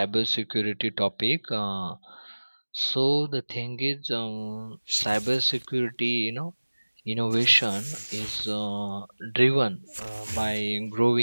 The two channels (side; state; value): both; inverted; correlation -1.00